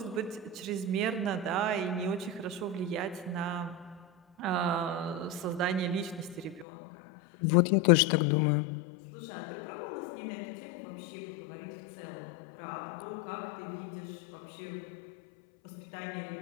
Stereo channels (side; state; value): right; drops out; at 6.7 s